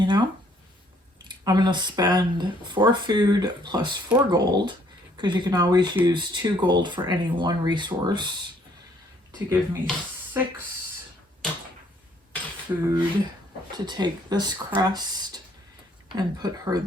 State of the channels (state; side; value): normal; both; correlation 0.64